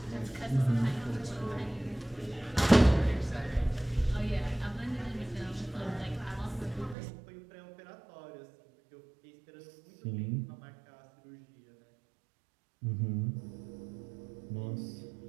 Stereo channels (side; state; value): left; drops out; at 7.0 s